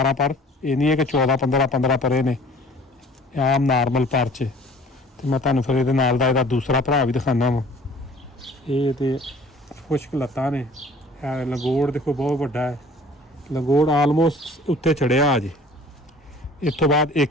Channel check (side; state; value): both; normal; correlation 0.50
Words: ਪਰ, ਇਹ ਨਹੀਂ ਹੈ ਕਿ 14 15 ਪਰੇ ਨੇ, ਆਮ ਨਾਰਮਲ ਪਰ 'ਚ। ਤੇ ਮੈਂ ਤੁਹਾਨੂੰ ਫਿਰ ਇਹਦੇ ਨਾਲ ਦਾ ਇਹਦਾ ਦੂਸਰਾ ਭਰਾ ਵੀ ਦਿਖਾਉਂਦਾ ਵਾਂ। ਇਹ ਤੇ ਖੁਸ਼ਕ ਲੱਤਾਂ ਨੇ। ਲੰਗੋੜ ਦੇਖੋ ਬਹੁਤ ਵੱਡਾ ਹੈ, ਲੰਗੋੜ ਆਲਮੋਸਟ ਉੱਤੇ ਚੜਿਆ ਅਜੇ। ਇਸ ਤੋਂ ਬਾਅਦ